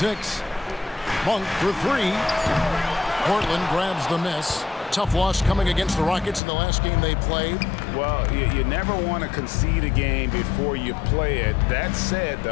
Monk for 3. Portland grabs the miss. Tough loss coming against the Rockets in the last game they played. Well, you never want to concede a game before you play it. That said,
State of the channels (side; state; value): right; drops out; at 6.4 s